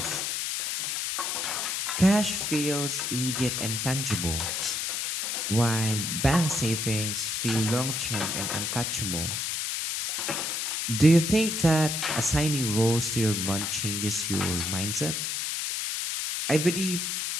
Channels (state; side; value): noise; left; hiss, 1 dB below the sound